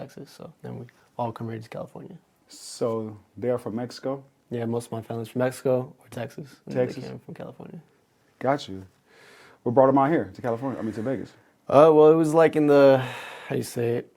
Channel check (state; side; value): identical; both; correlation 1.00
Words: So then we all come here to California. So they're from Mexico? Yeah, most of my family's from Mexico or Texas. And Texas? They came from California. Got you. What brought them out here to California? To Vegas? Well, it was like in the,